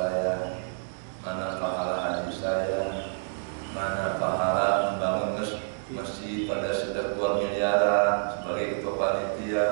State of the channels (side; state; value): left; silent; digital silence